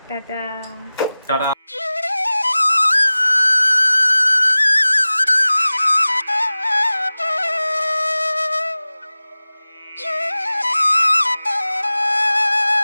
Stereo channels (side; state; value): both; inverted; correlation -0.97